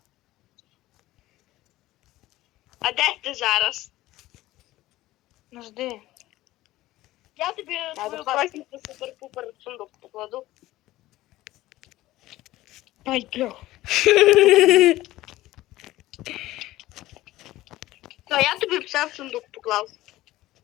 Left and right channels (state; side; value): quieter; right; 16.6 dB